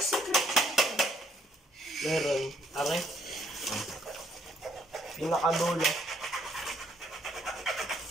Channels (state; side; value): normal; both; correlation 0.68